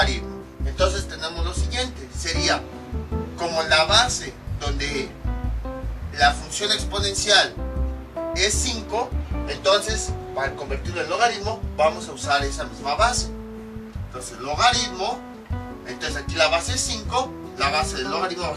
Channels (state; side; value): identical; both; correlation 1.00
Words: Entonces tenemos lo siguiente, sería como la base donde la función exponencial es 5, entonces para convertirlo en logaritmo vamos a usar esa misma base. Entonces logaritmo, entonces aquí la base es 5, la base del logaritmo va a